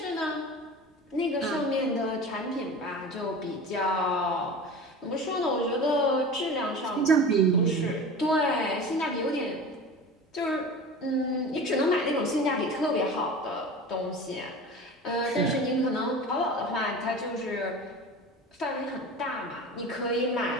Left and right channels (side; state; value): both; normal; correlation 0.34